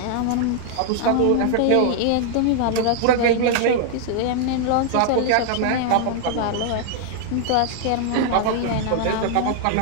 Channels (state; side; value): different; both; correlation 0.00